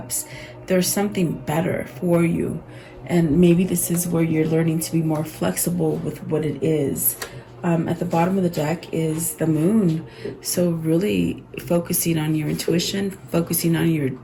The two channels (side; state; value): both; identical; correlation 1.00